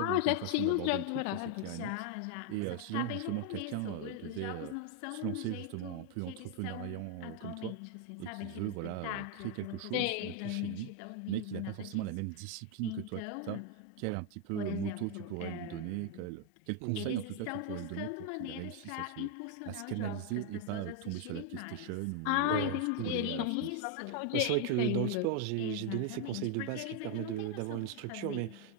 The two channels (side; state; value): both; different; correlation 0.00